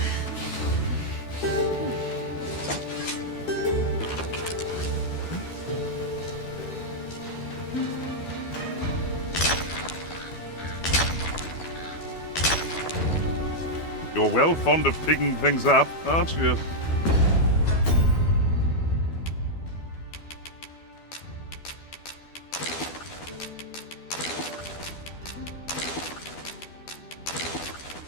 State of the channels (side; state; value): right; late; 12 ms